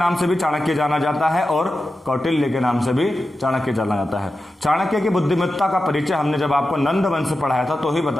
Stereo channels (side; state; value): both; normal; correlation 0.92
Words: से भी चाणक्य जाना जाता है और कौटिल्य के नाम से भी चाणक्य जाना जाता है। चाणक्य की बुद्धिमत्ता का परिचय हमने जब आपको नंद वंश पढ़ाया था तो ही